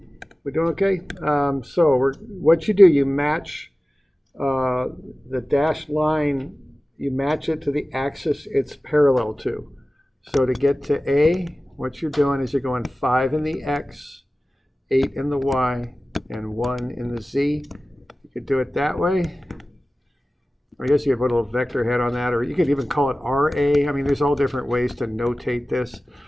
doing okay? What you do, you match the dashed line, you match it to the axis it's parallel to. So to get to A, what you're doing is you're going 5 in the X, 8 in the Y, and 1 in the Z. You could do it that way. I guess you could put a little vector head on that, or you could even call it RA. I mean, there's all different ways to notate this.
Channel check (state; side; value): normal; both; correlation 0.96